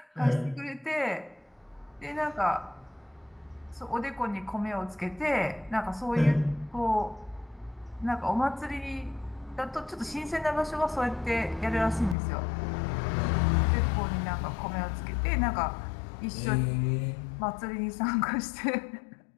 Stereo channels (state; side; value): drops out; right; at 12.2 s